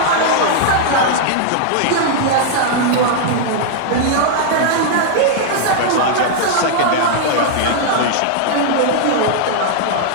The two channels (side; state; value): both; different; correlation -0.01